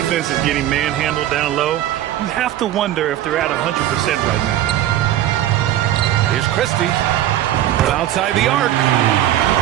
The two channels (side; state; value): left; quieter; 12.7 dB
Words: is getting manhandled down low, you have to wonder if they're at 100% right now. Here's Christie from outside the arc.